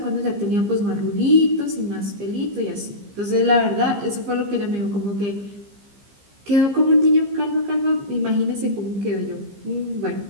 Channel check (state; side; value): late; left; 15 ms